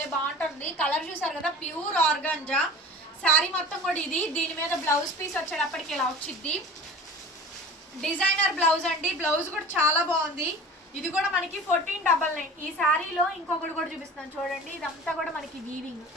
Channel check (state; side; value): normal; both; correlation 0.38